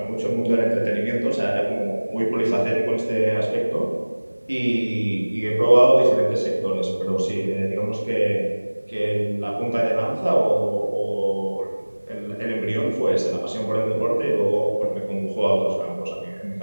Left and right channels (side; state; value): both; inverted; correlation -1.00